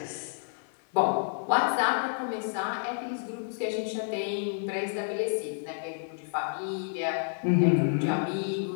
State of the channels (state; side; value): silent; right; 58 dB below the other